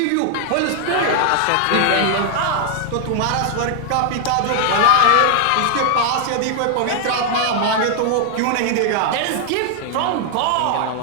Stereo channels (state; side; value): different; both; correlation 0.00